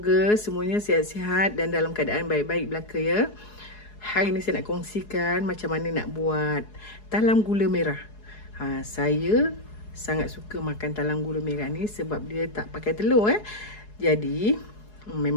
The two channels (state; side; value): late; right; 4.8 ms